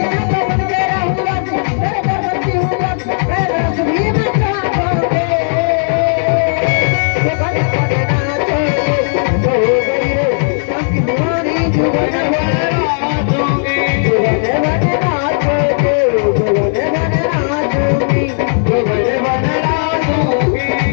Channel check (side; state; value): right; silent; digital silence